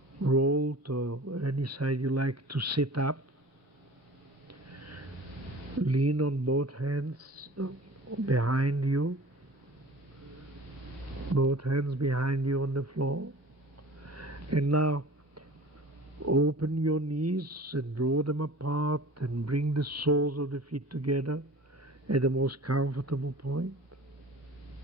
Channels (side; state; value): both; normal; correlation 0.43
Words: roll to any side you like to sit up. Lean on both hands behind you, both hands behind you on the floor. And now open your knees and draw them apart and bring the soles of the feet together at the most comfortable point.